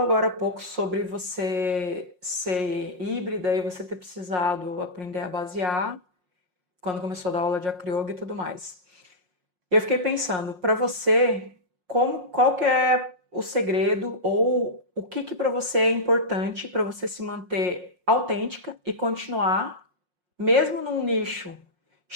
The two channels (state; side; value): late; left; 5.6 ms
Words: agora há pouco sobre você ser híbrida e você ter precisado aprender a basear quando começou a dar aula de acroyoga e tudo mais. Eu fiquei pensando, para você, qual que é o segredo ou o que para você é importante para você se manter autêntica e continuar, mesmo num nicho